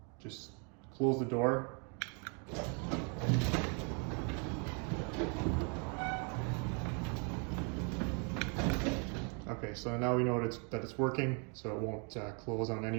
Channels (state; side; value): quieter; left; 36.6 dB